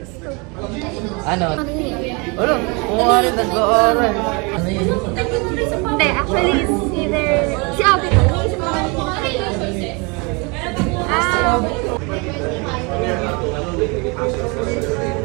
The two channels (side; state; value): left; quieter; 29.9 dB